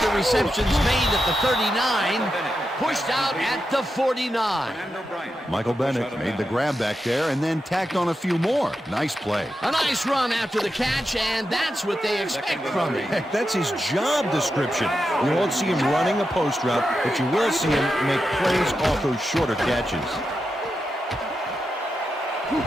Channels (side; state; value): both; normal; correlation 0.88